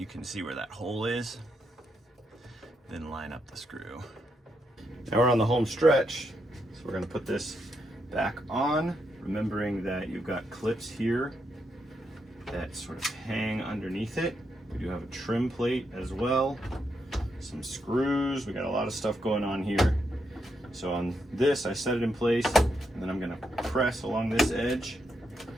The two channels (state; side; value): normal; both; correlation 0.81